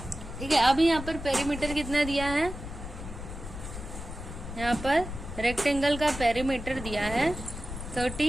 ठीक है, अभी यहाँ पर पेरीमीटर कितना दिया है, यहाँ पर रेक्टेंगल का पेरीमीटर दिया है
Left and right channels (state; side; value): noise; left; rumble, 9 dB below the sound